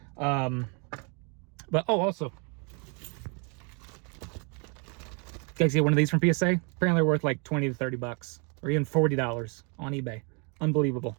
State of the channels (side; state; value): left; quieter; 35.1 dB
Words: But also, guys, get one of these from PSA. Apparently, they're worth like 20 to 30 bucks, or even $40 on eBay. Unbelievable.